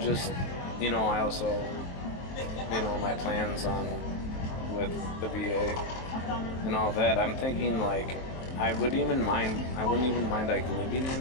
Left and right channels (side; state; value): right; late; 23 ms